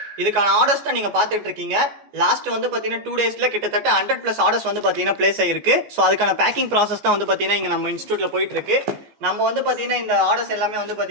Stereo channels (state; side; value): late; left; 14 ms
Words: இதுக்கான ஆர்டர்ஸ் தான் நீங்கள் பார்த்துட்டு இருக்கீங்க. லாஸ்ட் வந்து பார்த்தீங்கன்னா 2 டேஸில் கிட்டத்தட்ட 100+ ஆர்டர்ஸ் வந்து பார்த்தீங்கன்னா பிளேஸ் ஆகிருக்கு. ஸோ அதுக்கான பேக்கிங் ப்ராசஸ் தான் வந்து பார்த்தீங்கன்னா இங்கே நம்ம இன்ஸ்டியூட்டில் போயிட்டு இருக்கு. நம்ம வந்து பார்த்தீங்கன்னா இந்த ஆர்டர்ஸ் எல்லாமே வந்து